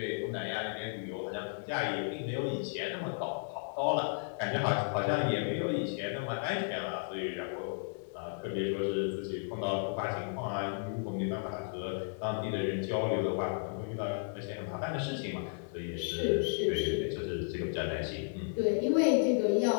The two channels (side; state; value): right; silent; digital silence